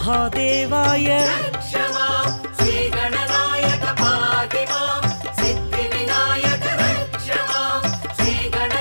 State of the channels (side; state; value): both; inverted; correlation -1.00